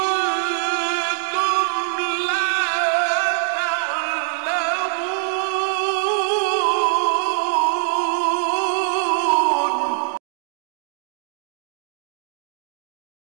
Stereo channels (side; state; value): left; silent; 64 dB below the other